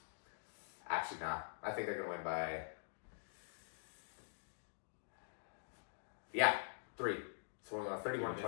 Actually, not. I think they're going to win by 3. So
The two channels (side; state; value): right; silent; digital silence